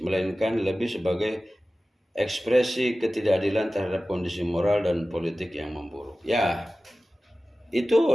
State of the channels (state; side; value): normal; both; correlation 0.96